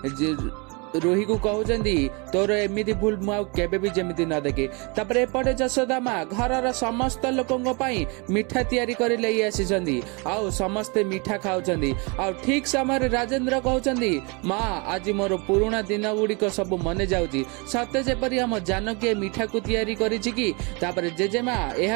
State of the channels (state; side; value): quieter; left; 30.3 dB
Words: रोही को कहउछंदी तोर एमिति भूल मु केबे भी जेमिति न देखे। तापरे एपटे जशोदा माँ घरर समस्त लोकंग पई मिठा तयारी करि लई आसीछंदी आउ समस्ते मिठा खाउछंदी। आउ ठीक समय राजेंद्र कहउछंदी माँ आज मोर पुराना दिन गुड़िक सब मने जाउची सते जेपरि हम जानकी मिठा को तयारी करिछि कि। तापरे जेजेमा